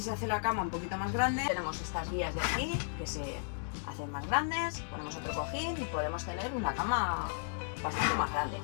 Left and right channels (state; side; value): silent; right; digital silence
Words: hace la cama un poquito más grande. Tenemos estas guías de aquí que se hacen más grandes, ponemos otro cojín y podemos tener una cama bastante más grande.